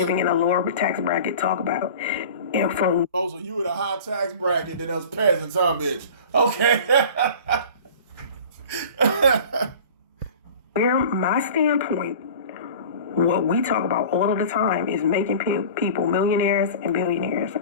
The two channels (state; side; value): inverted; both; correlation -0.40